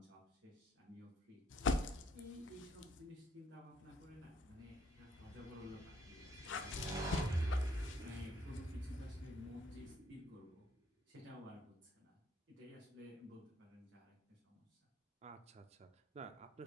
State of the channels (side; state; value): both; normal; correlation 0.67